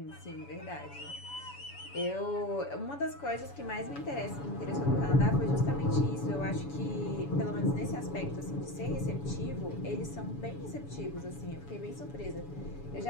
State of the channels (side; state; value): right; late; 7.0 ms